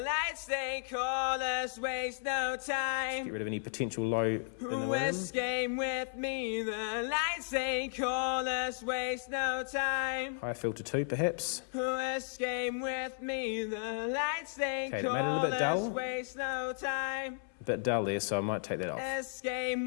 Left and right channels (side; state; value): right; silent; 55 dB below the other